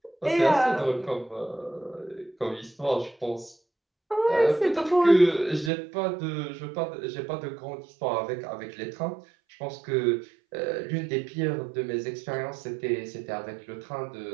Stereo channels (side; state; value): left; drops out; at 5.7 s